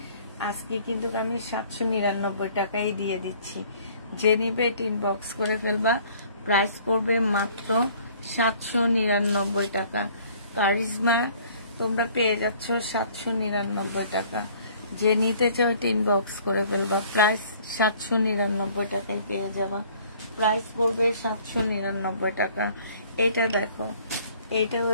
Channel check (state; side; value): inverted; both; correlation -0.55